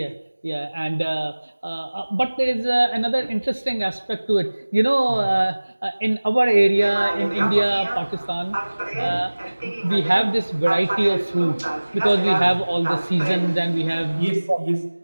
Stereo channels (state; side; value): inverted; both; correlation -1.00